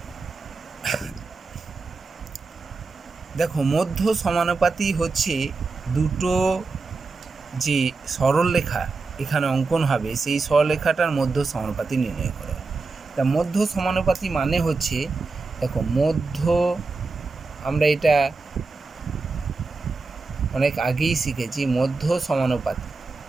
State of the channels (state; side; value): quieter; left; 4.0 dB